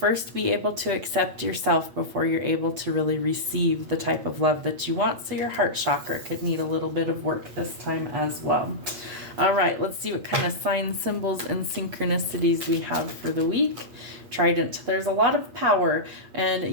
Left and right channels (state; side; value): late; left; 8.3 ms